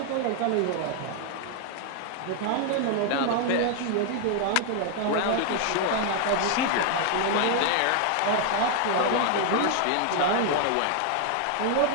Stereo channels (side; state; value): both; different; correlation 0.00